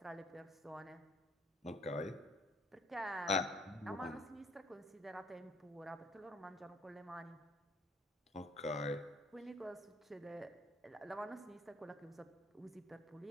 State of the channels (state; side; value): normal; both; correlation 0.61